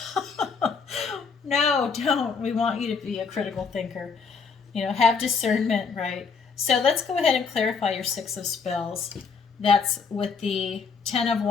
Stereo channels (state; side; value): quieter; right; 5.4 dB